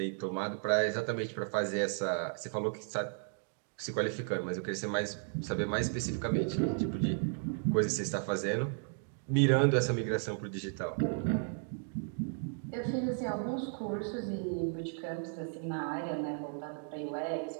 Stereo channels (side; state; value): left; silent; 55 dB below the other